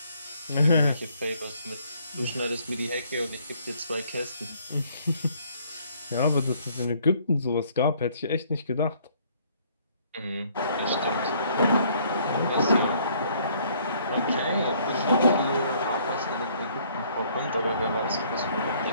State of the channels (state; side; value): inverted; both; correlation -0.63